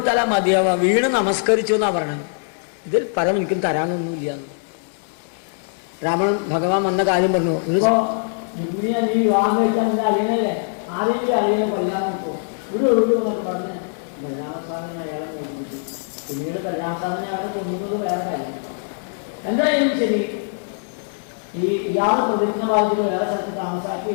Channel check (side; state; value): right; silent; 64 dB below the other